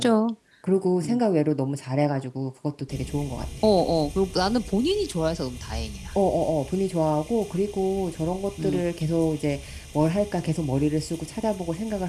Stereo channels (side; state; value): both; identical; correlation 1.00